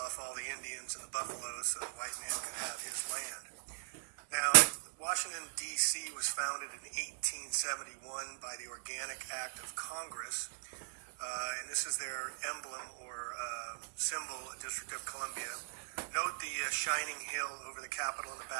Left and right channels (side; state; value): left; silent; 52 dB below the other